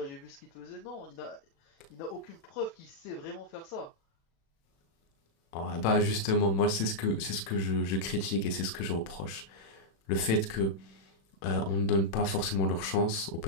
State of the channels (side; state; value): right; late; 36 ms